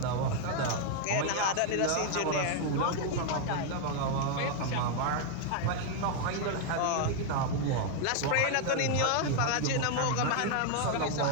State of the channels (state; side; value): different; both; correlation 0.00